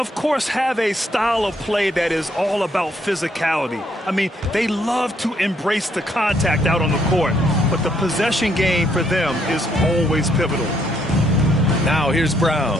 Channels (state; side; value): normal; both; correlation 0.71